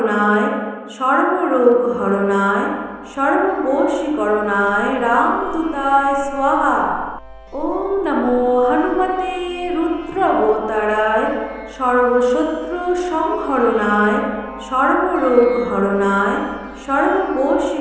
সর্বরোগ হরণায় সর্ববশীকরণায় রামদূতায় স্বাহা। ওম নমো হনুমতে রুদ্রাবতারায় সর্বশত্রু সংহরণায় সর্বরোগ হরণায়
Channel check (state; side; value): identical; both; correlation 1.00